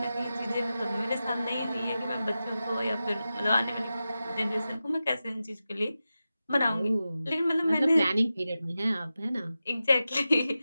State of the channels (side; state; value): both; inverted; correlation -0.93